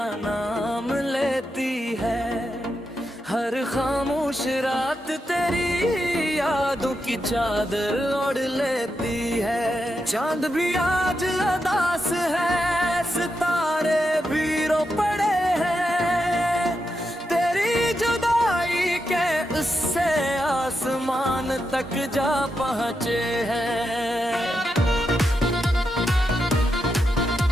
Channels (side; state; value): both; normal; correlation 0.86